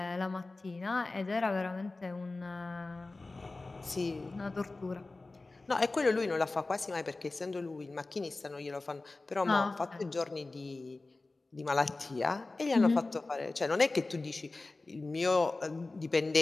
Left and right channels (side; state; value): right; quieter; 3.3 dB